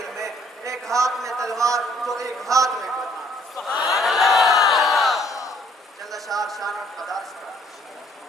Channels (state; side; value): normal; both; correlation 0.62